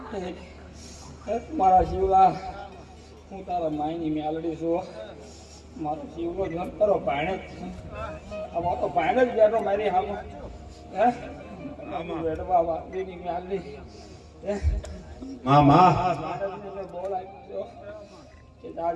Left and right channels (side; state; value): both; identical; correlation 1.00